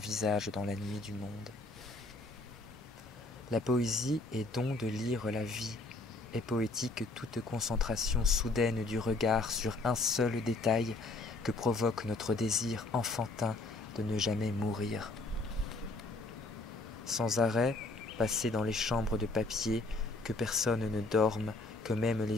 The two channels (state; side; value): quieter; right; 3.1 dB